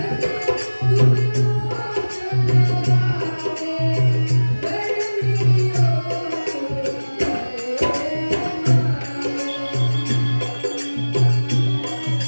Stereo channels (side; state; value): both; inverted; correlation -1.00